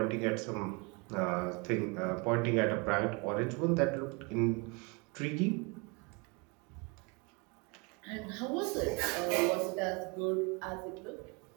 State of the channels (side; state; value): left; quieter; 30.0 dB